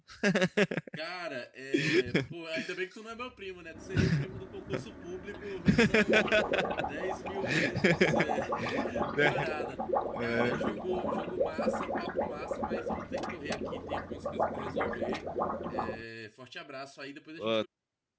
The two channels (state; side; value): identical; both; correlation 1.00